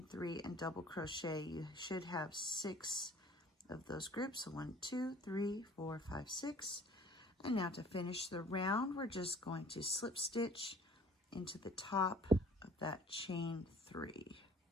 3 and double crochet, you should have 6 of those groups. So 1, 2, 3, 4, 5, 6. And now to finish the round, we're just going to slip stitch into the top of that chain 3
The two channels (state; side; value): normal; both; correlation 0.52